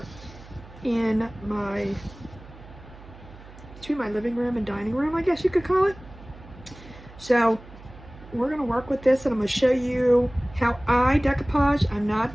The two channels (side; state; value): right; noise; hum, 19 dB below the sound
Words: in my, between my living room and dining room, I guess you could call it. So we're going to work with this, and I'm going to show you how I decoupage. I'm